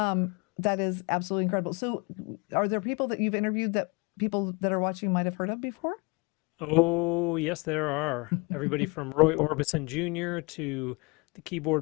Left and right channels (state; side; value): quieter; right; 28.7 dB